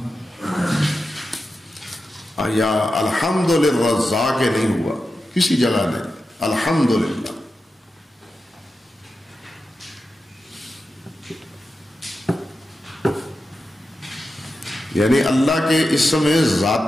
یا الحمد للرزاق نہیں ہوا کسی جگہ نہیں، الحمد للہ. یعنی اللہ کے اسم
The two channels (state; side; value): normal; both; correlation 0.91